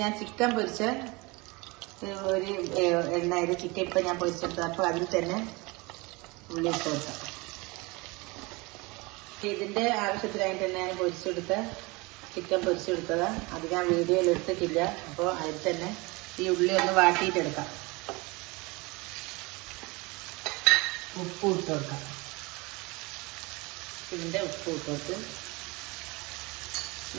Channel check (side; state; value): left; quieter; 25.2 dB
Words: ഞാൻ ചിക്കൻ പൊരിച്ച ഒരു എണ്ണയിൽ ചിക്കൻ ഇപ്പം ഞാൻ പൊരിച്ചെടുത്തത്. അപ്പോൾ അതിൽ തന്നെ ഉള്ളി ഇട്ട് കൊടുക്കാം. ഇതിൻ്റെ ആവശ്യത്തിനായിട്ട് തന്നെ ഞാൻ പൊരിച്ചെടുത്ത ചിക്കൻ പൊരിച്ചെടുത്തതാണ്. അത് ഞാൻ വീഡിയോയിൽ എടുത്തിട്ടില്ല. അപ്പോൾ അതിൽ തന്നെ ഈ ഉള്ളി ഒന്ന് വാട്ടിയിട്ടെടുക്കാം. ഉപ്പ് ഇട്ട് കൊടുക്കാം. ഇതിൻ്റെ ഉപ്പ് ഇട്ട് കൊടുത്ത്